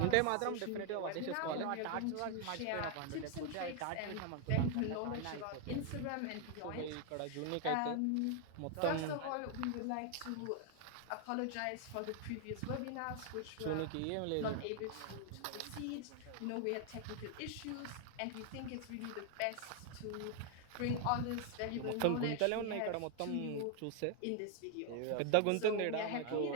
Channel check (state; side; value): different; both; correlation 0.00